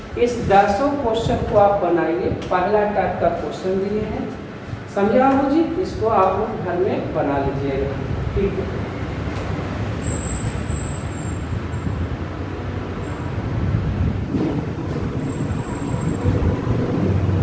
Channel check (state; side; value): identical; both; correlation 1.00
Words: इस 10 क्वेश्चन को आप बनाइए, पहला टाइप का क्वेश्चन दिए हैं, समझे बाबू जी, इसको आप लोग घर में बना लीजिएगा, ठीक है।